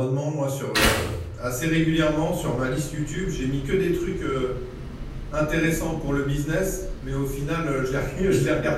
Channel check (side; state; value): both; identical; correlation 1.00